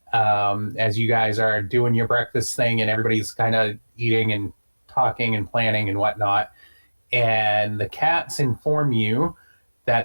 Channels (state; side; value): inverted; both; correlation -1.00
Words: as you guys are doing your breakfast thing and everybody's kind of eating and talking and planning and whatnot. And the cats inform you